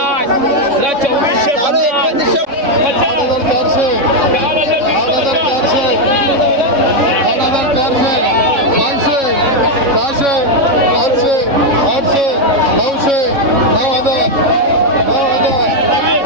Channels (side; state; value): left; late; 3.6 ms